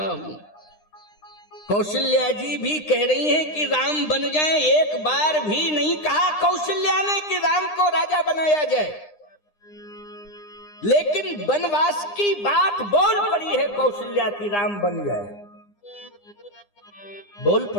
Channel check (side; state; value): right; late; 9.8 ms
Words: हूं। कौशल्या जी भी कह रही हैं कि राम बन जाए। एक बार भी नहीं कहा कौशल्या ने कि राम को राजा बनाया जाए, लेकिन वनवास की बात बोल पड़ी है कौशल्या की, राम बन जाए, बोल